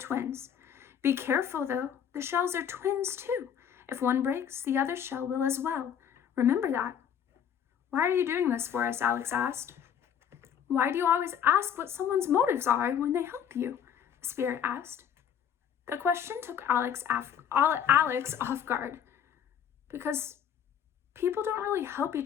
"Be careful, though. The shells are twins, too. If one breaks, the other shell will as well. Remember that." "Why are you doing this for us?" Alex asked. "Why do you always ask what someone's motives are when they help you?" the spirit asked. The question took Alex off guard. "Because people don't really help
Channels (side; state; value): right; quieter; 8.7 dB